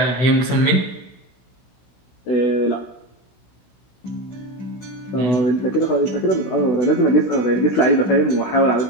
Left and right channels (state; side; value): late; right; 16 ms